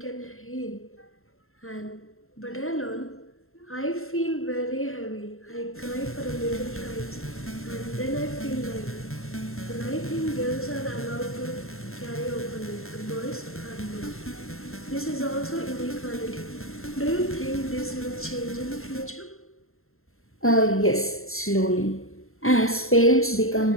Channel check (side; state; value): right; late; 0.62 ms